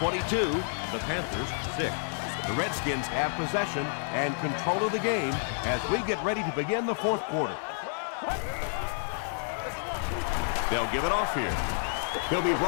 the Panthers 6. The Redskins have possession and control of the game as we get ready to begin the 4th quarter. They'll give it off here. He'll be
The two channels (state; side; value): silent; right; digital silence